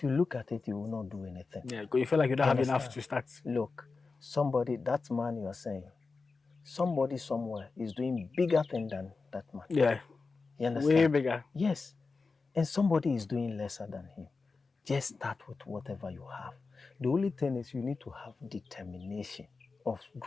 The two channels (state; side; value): quieter; right; 4.2 dB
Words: you look at it, you will not do anything. Yeah, because you feel like you don't have enough to start. Look, that man you are saying, somebody somewhere is doing bigger thing than that man. Yeah. You understand? Way bigger. Yes. And somebody is doing lesser than him. Just start with whatever you have. The only thing is you need to have determination of